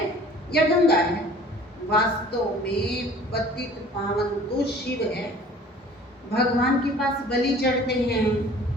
या गंगा है। वास्तव में पतित पावन तो शिव है। भगवान के पास बलि चढ़ते हैं,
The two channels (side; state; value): both; normal; correlation 0.49